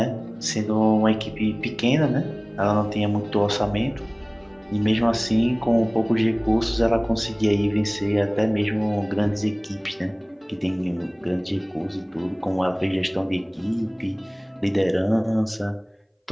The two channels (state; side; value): identical; both; correlation 1.00